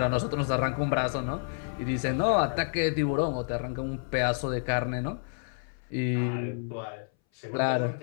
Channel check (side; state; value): right; silent; 58 dB below the other